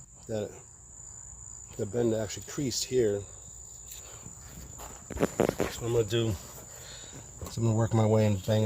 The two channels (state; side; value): identical; both; correlation 1.00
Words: that the bend actually creased here. So what I'm going to do is I'm going to work my way and